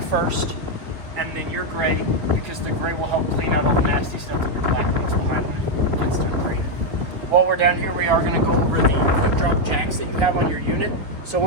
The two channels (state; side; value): late; left; 3.9 ms